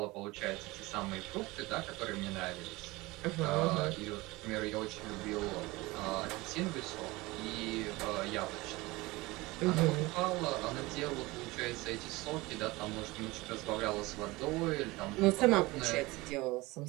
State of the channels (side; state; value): left; quieter; 21.6 dB